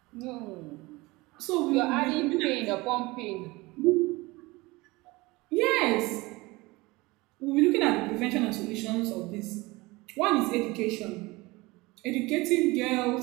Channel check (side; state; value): left; quieter; 22.5 dB